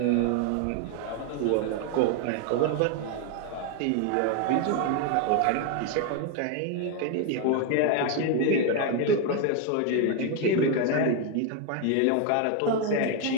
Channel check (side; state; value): both; different; correlation 0.01